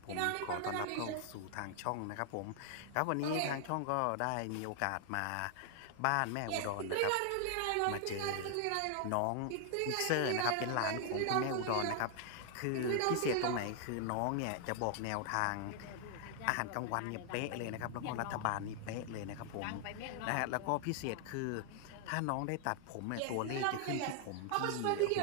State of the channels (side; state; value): both; different; correlation 0.00